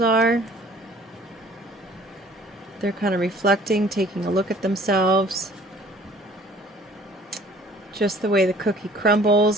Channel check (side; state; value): both; normal; correlation 0.53